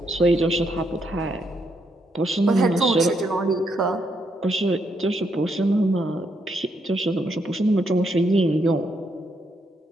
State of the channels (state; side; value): normal; both; correlation 0.77